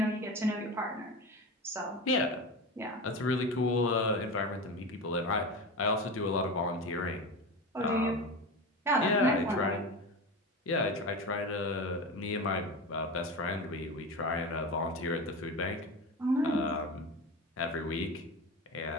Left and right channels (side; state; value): both; normal; correlation 0.25